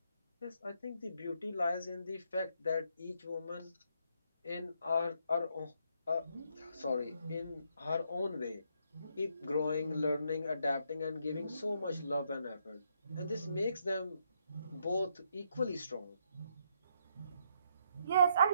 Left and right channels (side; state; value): both; inverted; correlation -0.74